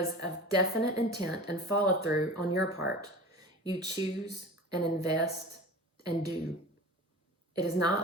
of definite intent and follow through on your part. You choose and invest and do. It is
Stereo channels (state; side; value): normal; both; correlation 0.36